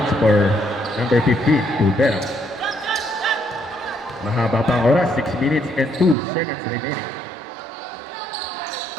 for number 15, Tubera. Mahaba pang oras, 6 minutes and 2 seconds remaining.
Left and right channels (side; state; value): left; drops out; at 6.2 s